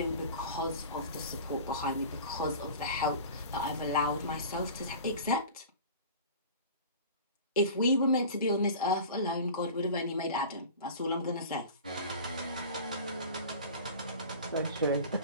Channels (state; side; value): inverted; both; correlation -0.38